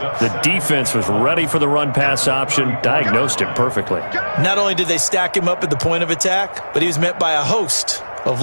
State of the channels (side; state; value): both; inverted; correlation -1.00